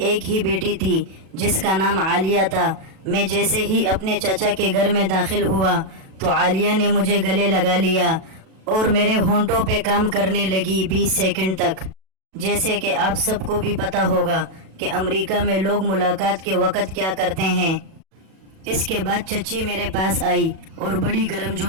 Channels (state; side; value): late; left; 37 ms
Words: ایک ہی بیٹی تھی جس کا نام عالیہ تھا۔ میں جیسے ہی اپنے چچا کے گھر میں داخل ہوا تو عالیہ نے مجھے گلے لگا لیا اور میرے ہونٹوں پہ کام کرنے لگی 20 سیکنڈ تک۔ جیسے کہ آپ سب کو بھی پتہ ہوگا کہ امریکہ میں لوگ ملاقات کے وقت کیا کرتے ہیں۔ اس کے بعد چچی میرے پاس آئی اور بڑی گرم